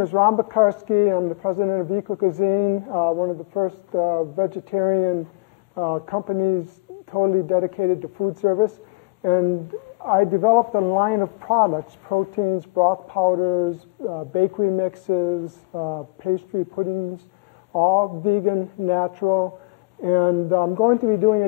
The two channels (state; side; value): quieter; right; 26.3 dB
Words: is Ron Bakarski. I'm the president of Eco-Cuisine, one of the first vegetarian companies totally dedicated to food service. And I developed a line of products, proteins, broth powders, bakery mixes, pastry puddings, all vegan, natural. And I'm going to be doing